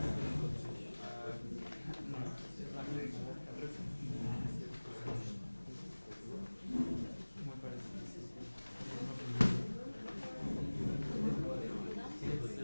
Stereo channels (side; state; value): both; inverted; correlation -1.00